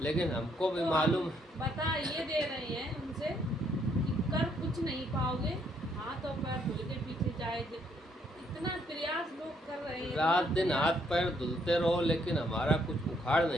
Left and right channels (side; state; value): both; normal; correlation 0.71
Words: लेकिन हमको भी तो मालूम। हम बता ये दे रहे हैं उनसे कि कर कुछ नहीं पाओगे, हाथ और पैर धुल के पीछे जाएंगे। इतना प्रयास लोग कर रहे हैं, रात इतना दिन हाथ प्रयास। पैर धुलते रहो, लेकिन हमारा कुछ उखाड़